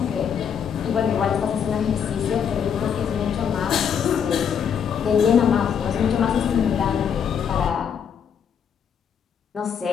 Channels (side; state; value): right; quieter; 7.6 dB